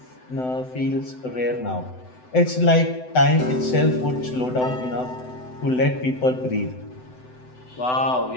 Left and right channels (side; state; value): right; late; 7.9 ms